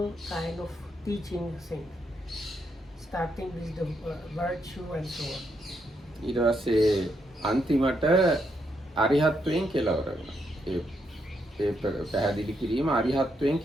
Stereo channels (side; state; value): both; normal; correlation 0.78